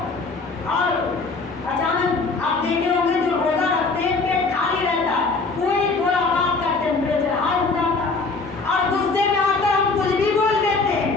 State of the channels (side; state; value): right; quieter; 3.9 dB